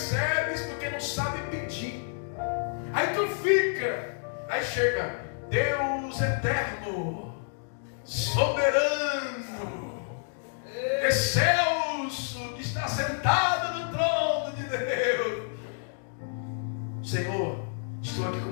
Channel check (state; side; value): silent; right; digital silence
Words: porque não sabe pedir. Aí tu fica. Aí chega Deus eterno, soberano, excelso, que está sentado no trono de Deus. Senhor, estou aqui